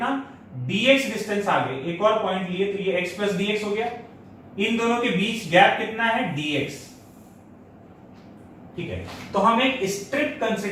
dx डिस्टेंस आगे एक और पॉइंट लिए, तो ये x प्लस dx हो गया। इन दोनों के बीच गैप कितना है, dx, ठीक है। तो हम एक स्ट्रिप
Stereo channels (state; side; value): identical; both; correlation 1.00